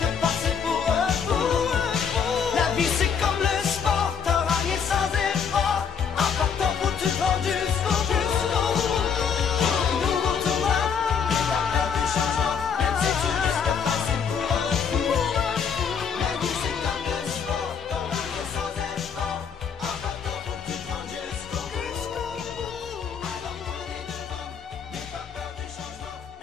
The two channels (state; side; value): quieter; right; 6.7 dB